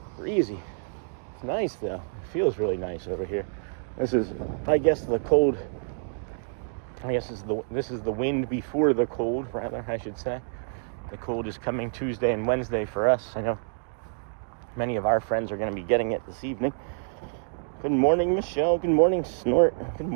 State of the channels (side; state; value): left; silent; digital silence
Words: Breezy. It's nice, though. It feels really nice over here. This is, I guess, the cold. This is the wind before the cold, rather, I should say. The cold is coming Tuesday and Wednesday for us. I know many of our friends are going to be getting it this evening. Good morning, Michelle. Good morning, Snort. Good